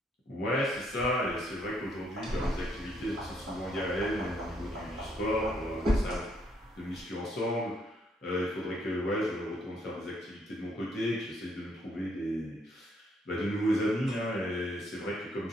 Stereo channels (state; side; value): normal; both; correlation 0.71